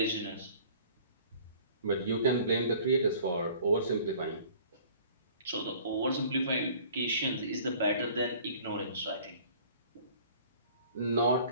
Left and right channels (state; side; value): inverted; both; correlation -0.50